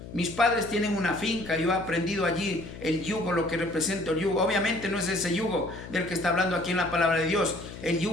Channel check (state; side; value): noise; left; hum, 13 dB below the sound